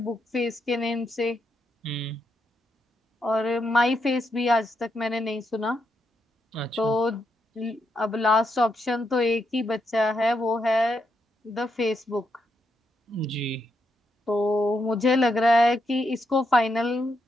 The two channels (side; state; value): both; normal; correlation 0.81